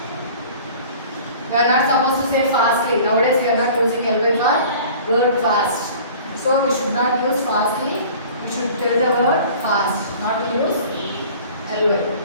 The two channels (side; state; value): both; inverted; correlation -0.45